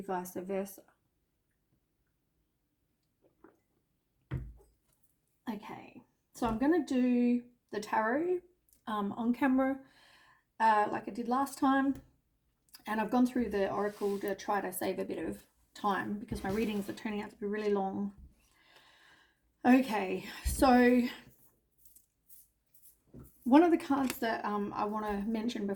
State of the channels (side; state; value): both; identical; correlation 1.00